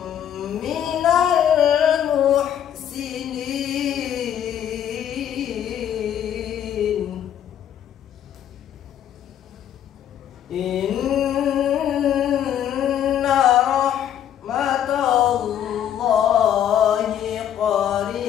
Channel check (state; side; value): quieter; right; 10.0 dB